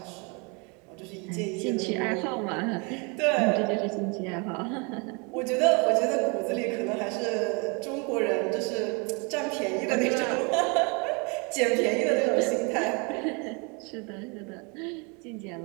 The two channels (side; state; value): left; quieter; 31.9 dB